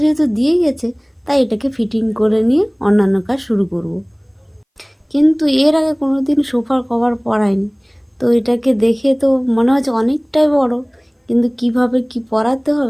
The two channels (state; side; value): identical; both; correlation 1.00